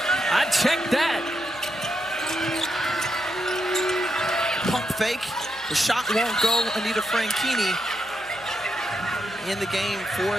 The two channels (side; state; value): right; noise; hum, 26 dB below the sound